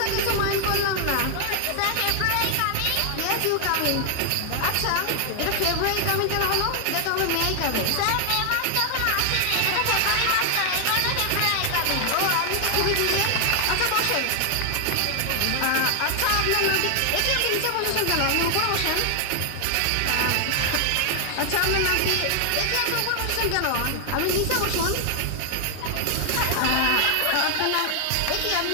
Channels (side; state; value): both; different; correlation 0.00